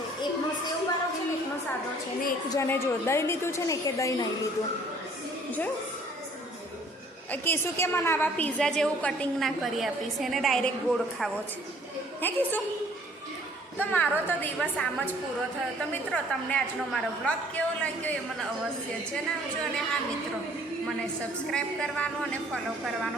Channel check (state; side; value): normal; both; correlation 0.57